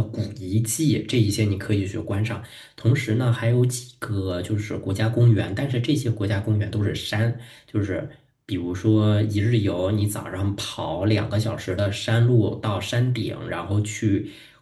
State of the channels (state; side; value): identical; both; correlation 1.00